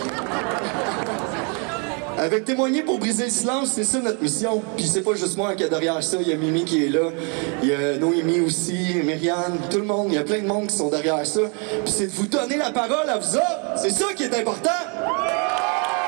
Avec Témoigner pour briser le silence, c'est ça notre mission. Puis c'est pas juste moi qui est derrière ça, il y a Mimi qui est là, il y a Noémie aussi, Myriane, tout le monde, il y a plein de monde qui sont derrière ça. Puis c'est de vous donner la parole à vous autres, c'est ça qui est important.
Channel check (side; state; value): left; quieter; 36.3 dB